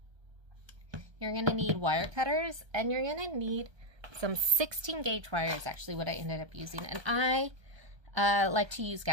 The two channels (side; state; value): left; late; 1.2 ms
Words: you're going to need wire cutters, and you're going to need some 16 gauge wire is actually what I ended up using. And I like to use